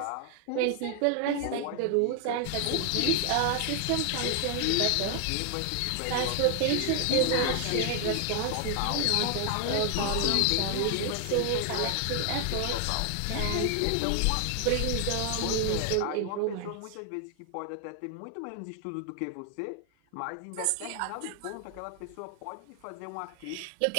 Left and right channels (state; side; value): different; both; correlation 0.00